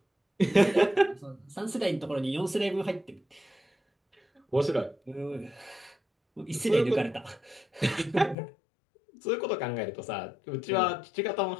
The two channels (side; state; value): right; drops out; at 8.3 s